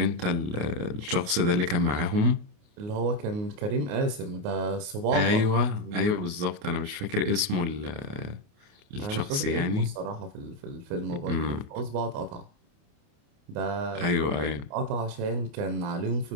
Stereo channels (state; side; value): late; left; 28 ms